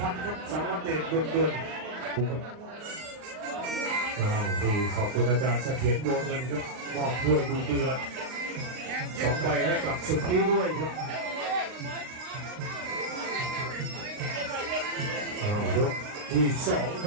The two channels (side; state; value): left; late; 39 ms